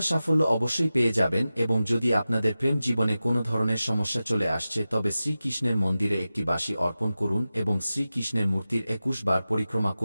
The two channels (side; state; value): both; inverted; correlation -0.94